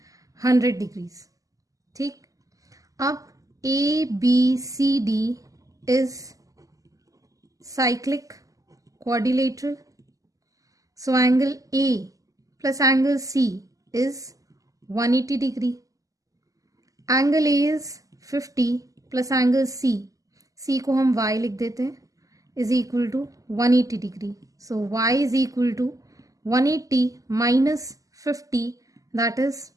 100 डिग्रीज, ठीक। अब ABCD is cyclic quadrilateral, so angle A plus angle C is 180 degree. Angle A is 50 plus angle C को हम y लिख देते हैं, is equal to 180 degree. So y is equal to 180 minus 50, that is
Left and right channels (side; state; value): left; late; 0.17 ms